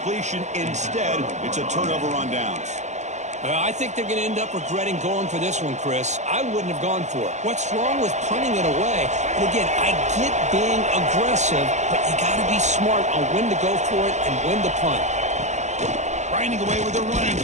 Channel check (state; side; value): late; left; 0.34 ms